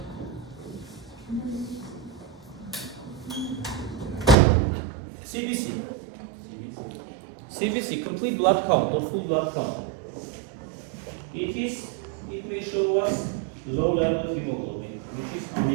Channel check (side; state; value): left; drops out; at 4.4 s